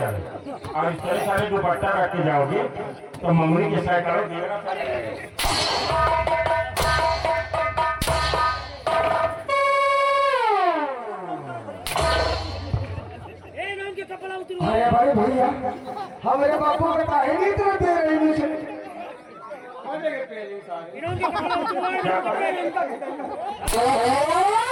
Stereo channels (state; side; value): identical; both; correlation 1.00